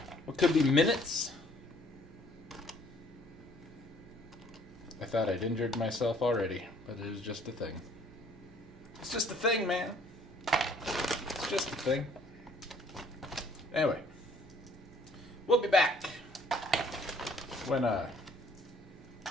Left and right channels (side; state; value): both; normal; correlation 0.60